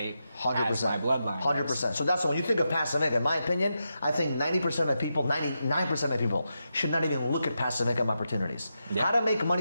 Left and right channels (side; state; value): both; inverted; correlation -0.87